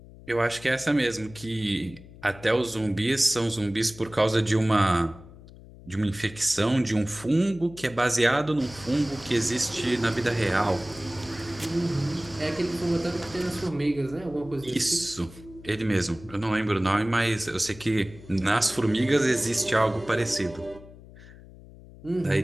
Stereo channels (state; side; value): noise; left; hum, 19 dB below the sound